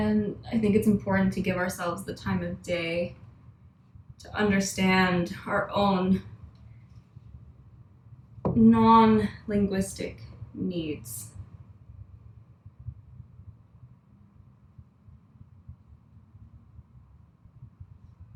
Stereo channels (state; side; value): identical; both; correlation 1.00